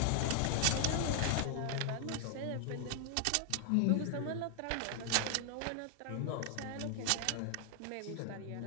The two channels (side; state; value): both; different; correlation 0.00